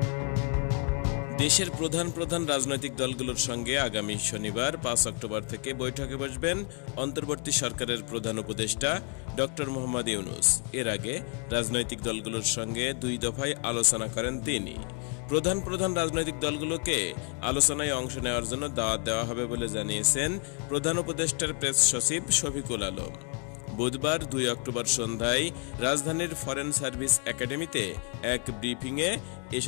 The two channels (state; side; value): quieter; right; 34.4 dB